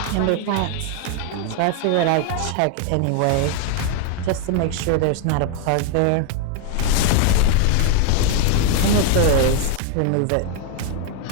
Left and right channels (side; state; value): both; different; correlation 0.01